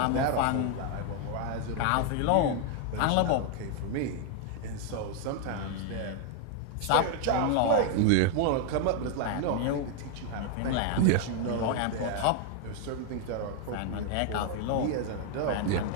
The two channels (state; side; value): different; both; correlation 0.00